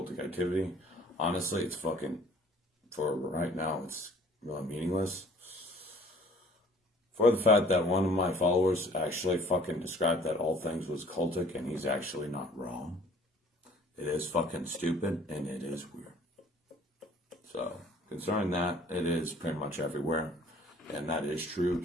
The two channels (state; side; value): normal; both; correlation 0.53